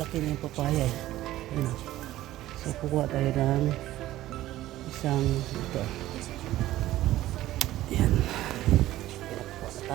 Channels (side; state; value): left; quieter; 15.1 dB